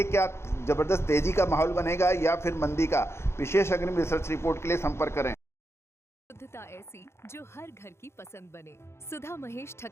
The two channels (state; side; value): late; right; 0.13 ms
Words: क्या ज़बरदस्त तेज़ी का माहौल बनेगा या फिर मंदी का? विशेष अग्रिम रिसर्च रिपोर्ट के लिए संपर्क करें। शुद्धता ऐसी जो हर घर की पसंद बने। सुधा महेश